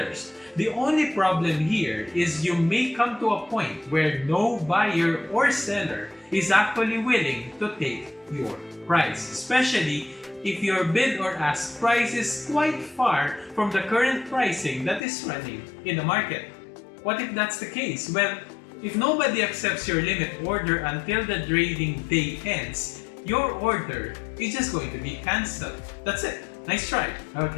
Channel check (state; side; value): drops out; right; at 15.0 s